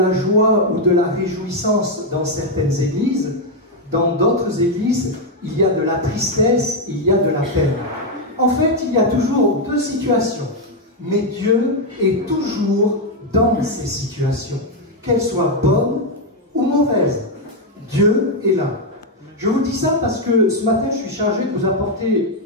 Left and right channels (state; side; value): normal; both; correlation 0.03